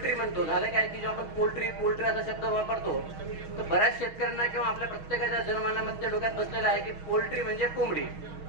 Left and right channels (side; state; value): left; late; 6.3 ms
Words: म्हणतो, झालं काय की जेव्हा आपण पोल्ट्री असा शब्द वापरतो तर बऱ्याच शेतकऱ्यांना किंवा आपल्या प्रत्येकाच्या जनमानामध्ये डोक्यात बसलेला आहे की पोल्ट्री म्हणजे कोंबडी.